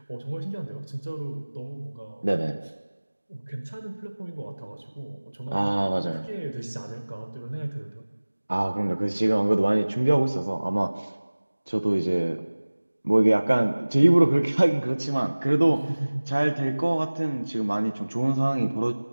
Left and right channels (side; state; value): both; inverted; correlation -1.00